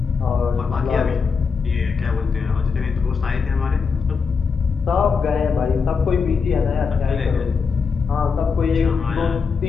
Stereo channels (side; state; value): right; quieter; 5.4 dB